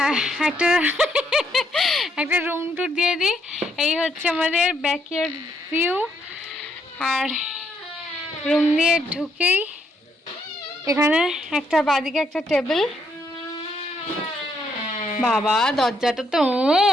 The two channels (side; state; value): both; normal; correlation 0.73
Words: একটা রুম টুর দিয়ে দিই। এই হচ্ছে আমাদের ব্যাকইয়ার্ড ভিউ। আর রুম দিয়ে ঢুকেই এখানে একটা বাদিকে একটা টেবিল। বাবা দরজাটা তো